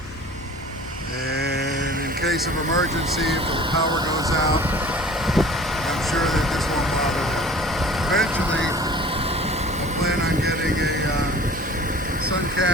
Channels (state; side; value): normal; both; correlation 0.45